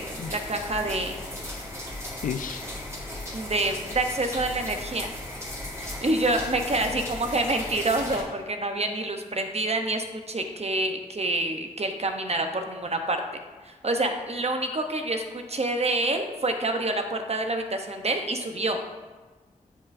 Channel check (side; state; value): both; normal; correlation 0.33